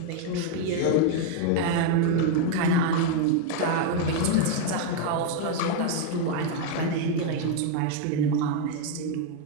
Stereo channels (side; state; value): both; different; correlation 0.01